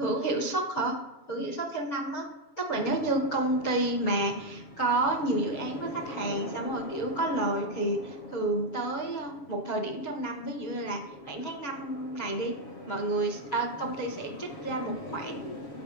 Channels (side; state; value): right; late; 7.1 ms